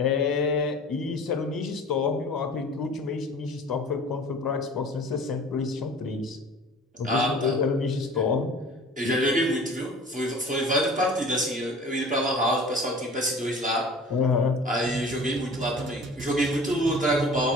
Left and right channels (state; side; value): normal; both; correlation 0.43